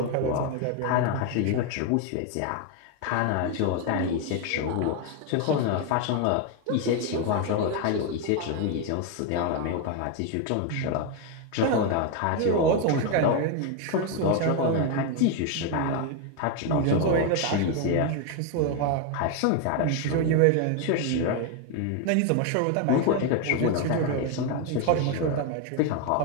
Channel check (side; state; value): both; different; correlation 0.01